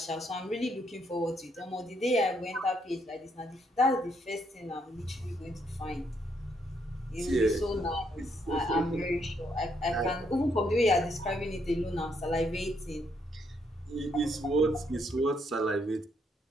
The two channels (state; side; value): normal; both; correlation 0.73